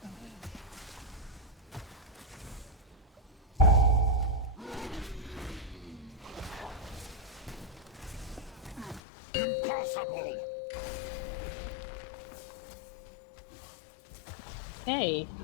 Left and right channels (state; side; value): drops out; right; at 9.0 s